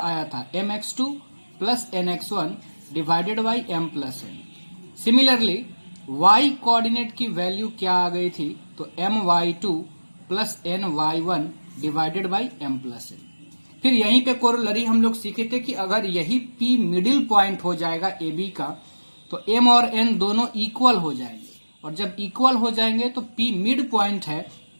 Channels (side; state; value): both; inverted; correlation -1.00